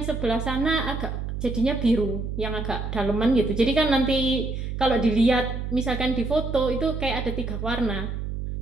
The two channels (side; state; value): right; noise; hum, 5 dB below the sound